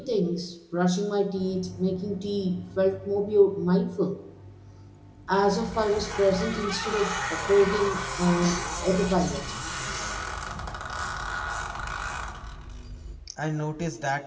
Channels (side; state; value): both; identical; correlation 1.00